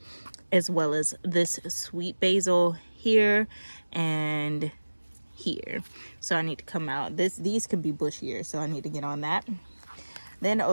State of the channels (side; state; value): both; inverted; correlation -1.00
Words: as well as this sweet basil here and here. So I need to come out. These could be bushier, so I need to get on that. Then